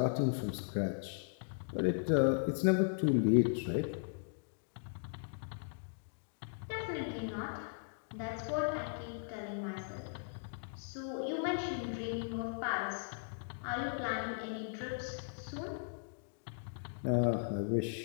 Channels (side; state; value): right; silent; digital silence